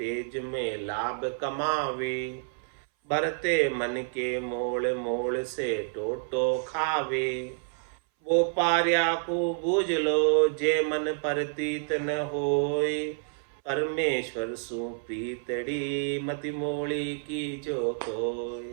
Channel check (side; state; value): left; silent; 59 dB below the other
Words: में लाभ कमावे। भरते मन के मोल, मोल से टोटो खावे। वो पार्या को बूझ लो, जे मन परतीत न होय। परमेश्वर सु प्रीतड़ी, मति मोड़ी की जो कोई।